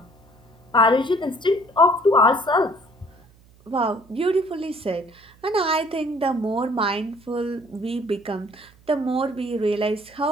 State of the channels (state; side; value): noise; right; hum, 28 dB below the sound